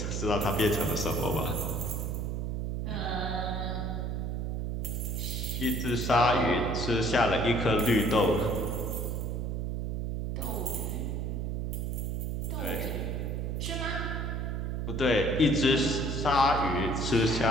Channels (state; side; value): noise; right; hum, 1 dB below the sound